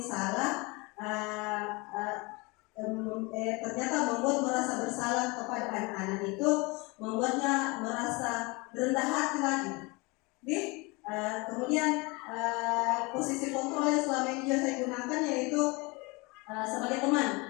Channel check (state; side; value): quieter; right; 26.6 dB